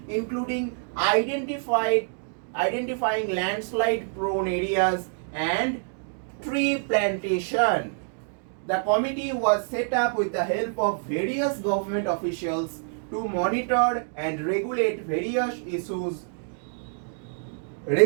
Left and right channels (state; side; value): silent; left; digital silence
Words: including identifying landslide prone areas and tree plantation. The committee was set up with the help of various government officials to monitor and regulate various issues